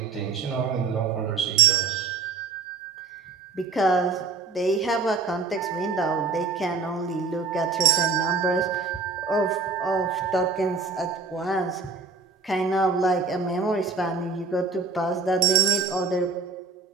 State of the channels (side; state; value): left; quieter; 4.6 dB